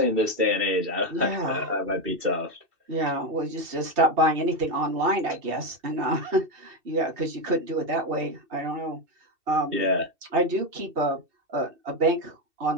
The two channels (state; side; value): late; left; 2.7 ms